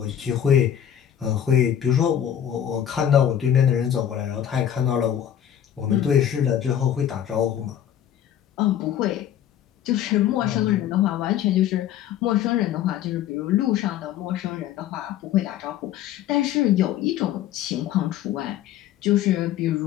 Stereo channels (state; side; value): quieter; right; 10.2 dB